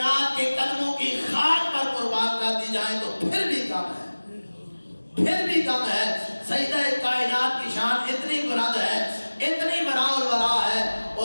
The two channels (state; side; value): inverted; both; correlation -1.00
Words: کے قدموں کی خاک پر قربان کر دی جائیں تو پھر بھی کم ہے، پھر بھی کم ہے۔ سیدہ کائنات کی شان اتنی بلند ہے، اتنی براء البراء ہے،